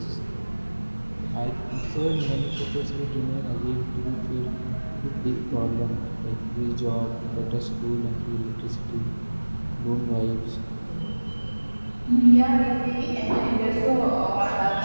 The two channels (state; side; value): inverted; both; correlation -1.00